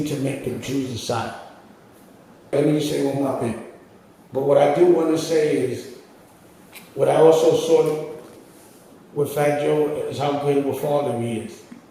to make them choose a side. Let me say one more thing. But what I do want to say is, what I also saw with Fat Joe is how good of a father he is.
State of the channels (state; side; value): identical; both; correlation 1.00